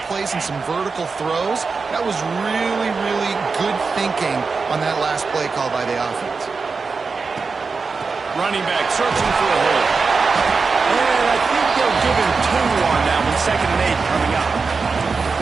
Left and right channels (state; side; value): quieter; left; 4.7 dB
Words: plays and some vertical throws. That was really, really good thinking on that last play call by the offense. Running back searching for a hole. And I think they'll give him 2 on that one. 2nd and 8 coming up.